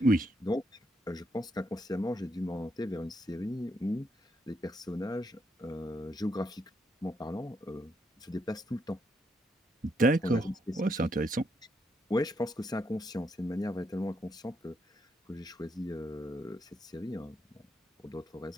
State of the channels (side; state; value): both; normal; correlation 0.78